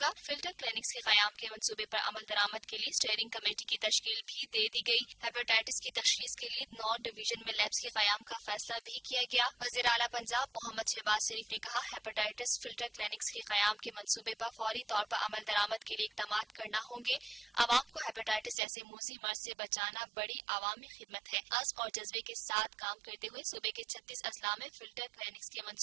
گا۔ فلٹر کلینکس کے قیام کے منصوبے پر عمل درآمد کے لیے اسٹیئرنگ کمیٹی کی تشکیل بھی دے دی گئی۔ ہیپاٹائٹس کی تشخیص کے لیے 9 ڈویژن میں لیبس کے قیام کا فیصلہ بھی کیا گیا۔ وزیر اعلیٰ پنجاب محمد شہباز شریف نے کہا، ہیپاٹائٹس فلٹر کلینکس کے قیام کے منصوبے پر فوری طور پر عمل درآمد کے لیے اقدامات کرنا ہوں گے۔ عوام کو ہیپاٹائٹس جیسے موذی مرض سے بچانا بڑی عوامی خدمت ہے۔ عزم اور جذبے کے ساتھ کام کرتے ہوئے صوبے کے 36 اضلاع میں فلٹر کلینکس کے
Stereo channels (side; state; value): left; drops out; at 18.6 s